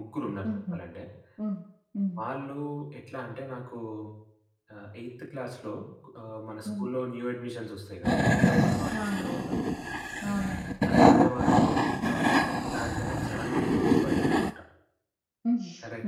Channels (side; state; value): both; identical; correlation 1.00